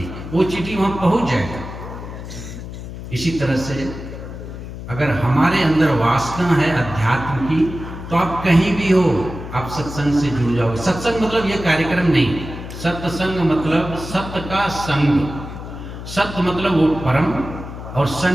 वो चींटी वहां पहुंच जाएगा। इसी तरह से अगर हमारे अंदर वासना है अध्यात्म की, तो आप कहीं भी हो, आप सत्संग से जुड़ जाओ। सत्संग मतलब ये कार्यक्रम नहीं, सत्संग मतलब सत्य का संग, सत्य मतलब वो परम, और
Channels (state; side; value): noise; left; hum, 10 dB below the sound